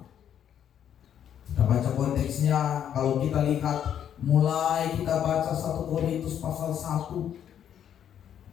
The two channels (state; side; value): quieter; right; 9.5 dB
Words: Kita baca konteksnya, kalau kita lihat mulai kita baca 1 Korintus pasal 1,